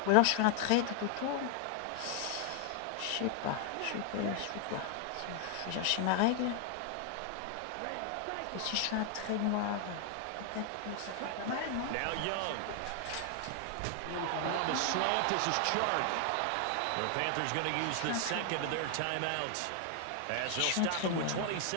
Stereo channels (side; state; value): both; different; correlation 0.00